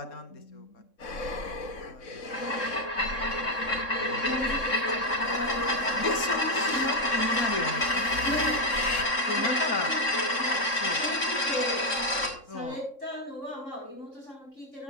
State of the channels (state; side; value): late; right; 3.7 ms